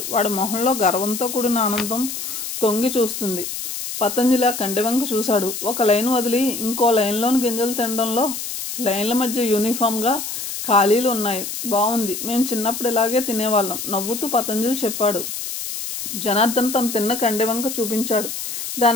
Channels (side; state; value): left; noise; hiss, 6 dB below the sound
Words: వాడి మొహంలో గర్వంతో కూడిన ఆనందం తొంగి చూస్తుంది. పతంజలి ఆ కంటి వంక చూశాడు. ఒక లైన్ వదిలి ఇంకో లైన్లోని గింజలు తినడంలో లైన్ల మధ్య యూనిఫామ్గా ఖాళీలు ఉన్నాయి. బాగుంది. మేము చిన్నప్పుడు ఇలాగే తినేవాళ్ళం నవ్వుతూ పతంజలి చెప్పాడు. జనార్దన్ తను తిన్న కండె వంక చూపించాడు.